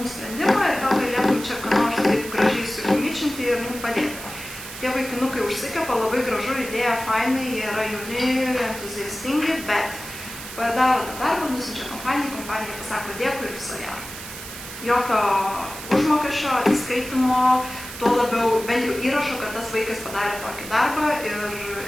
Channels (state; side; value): noise; right; hiss, 11 dB below the sound